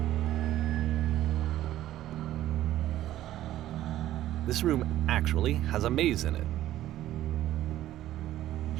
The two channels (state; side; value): quieter; left; 13.6 dB